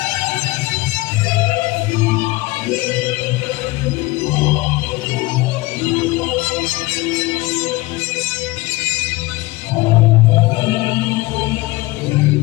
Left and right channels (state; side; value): quieter; right; 20.9 dB